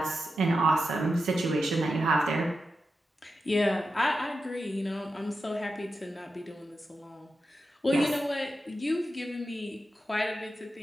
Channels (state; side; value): normal; both; correlation 0.90